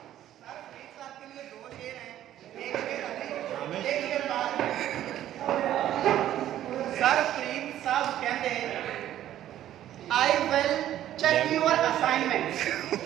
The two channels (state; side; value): quieter; left; 12.3 dB